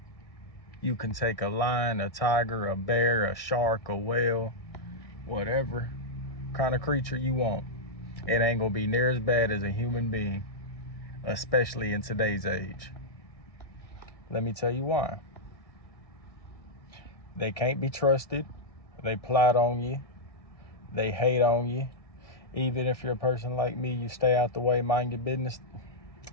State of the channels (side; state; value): right; late; 1.6 ms